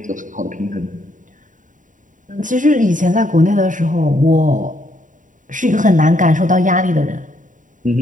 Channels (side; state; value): left; late; 0.38 ms